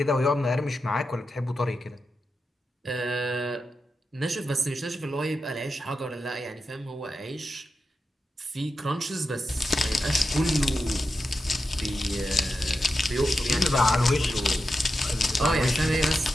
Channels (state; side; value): normal; both; correlation 0.89